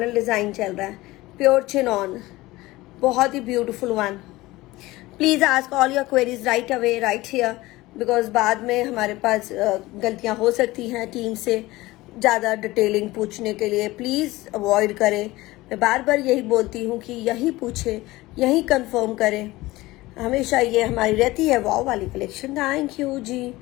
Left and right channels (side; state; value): right; quieter; 19.2 dB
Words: डिजाइन चल रहा है, प्योर चिनॉन, बहुत ही beautiful one. Please ask all your queries right away, right here, because बाद में हमारे पास गलतियां हो सकती हैं टीम से ज़्यादा डिटेलिंग पूछने के लिए। प्लीज़ अवॉइड करें, मैं बार बार यही बोलती हूँ कि यही पूछे, यही कंफर्म करें, हमेशा ये हमारी रहती है। वाव वाली कलेक्शन, थैंक यू जी,